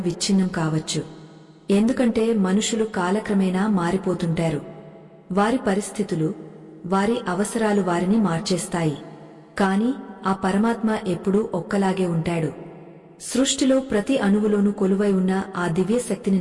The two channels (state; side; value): identical; both; correlation 1.00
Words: కావచ్చు. ఎందుకంటే మనుషులు కాలక్రమేణా మారిపోతుంటారు. వారి పరిస్థితులు, వారి అవసరాలు వారిని మార్చేస్తాయి. కాని ఆ పరమాత్మ ఎప్పుడూ ఒక్కలాగే ఉంటాడు. సృష్టిలో ప్రతి అణువులోనూ కొలువై ఉన్న ఆ దివ్యశక్తిని